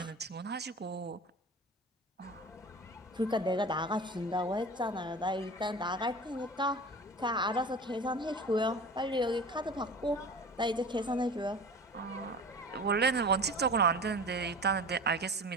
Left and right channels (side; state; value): both; normal; correlation 0.36